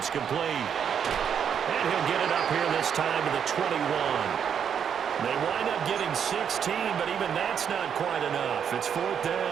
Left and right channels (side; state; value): left; quieter; 7.9 dB